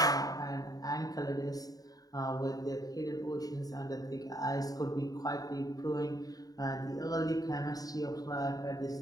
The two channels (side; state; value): right; late; 0.18 ms